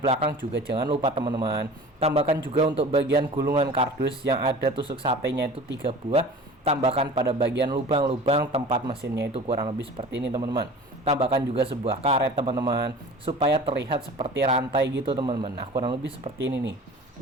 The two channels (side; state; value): both; normal; correlation 0.40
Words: belakang juga jangan lupa, teman-teman. Tambahkan juga untuk bagian gulungan kardus yang ada tusuk satenya itu 3 buah. Tambahkan pada bagian lubang-lubang tempat mesinnya itu kurang lebih seperti ini, teman-teman. Tambahkan juga sebuah karet, teman-teman, supaya terlihat seperti rantai gitu, teman-teman. Nah, kurang lebih seperti ini nih.